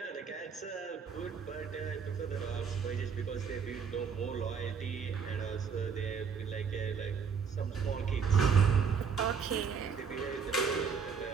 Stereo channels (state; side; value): quieter; left; 6.2 dB